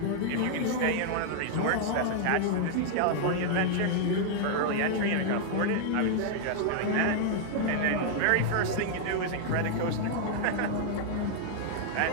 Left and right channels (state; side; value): different; both; correlation 0.00